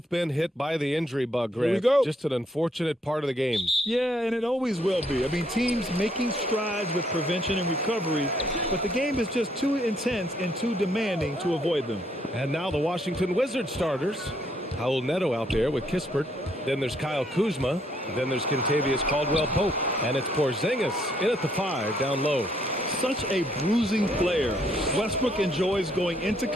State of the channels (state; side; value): normal; both; correlation 0.70